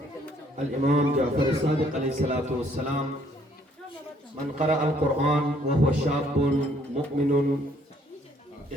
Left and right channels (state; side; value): normal; both; correlation 0.64